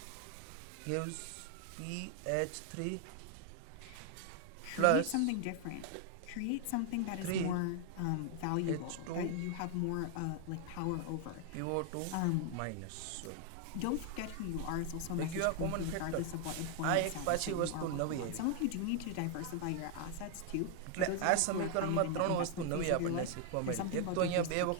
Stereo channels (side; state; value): both; different; correlation 0.00